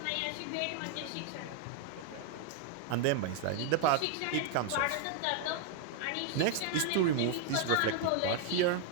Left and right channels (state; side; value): different; both; correlation 0.00